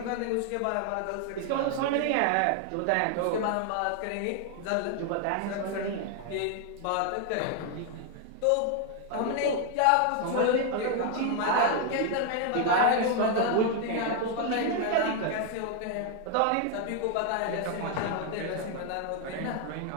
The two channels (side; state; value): both; different; correlation 0.00